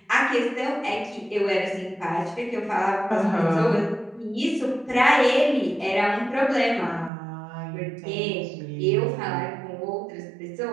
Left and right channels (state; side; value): drops out; left; at 7.1 s